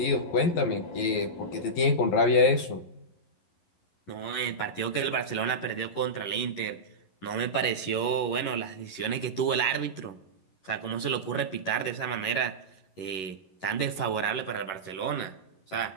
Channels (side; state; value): right; late; 11 ms